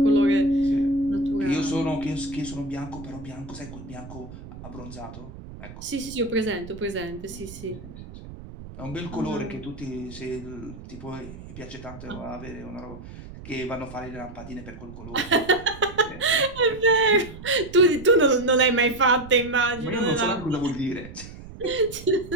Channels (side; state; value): right; noise; rumble, 14 dB below the sound